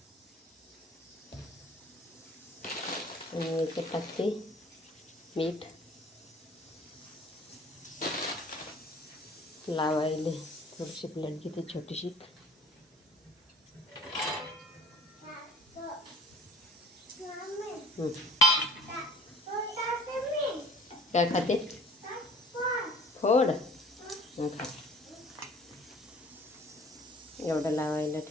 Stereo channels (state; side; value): normal; both; correlation 0.51